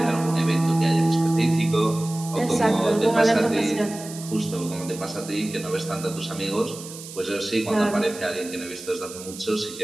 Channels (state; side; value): noise; right; hiss, 14 dB below the sound